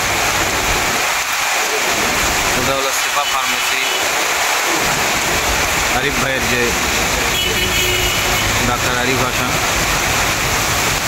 এটা হলো সিফা ফার্মেসি আরিফ ভাইয়ের যে ডাক্তার আরিফ হাসান,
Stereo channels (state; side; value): identical; both; correlation 1.00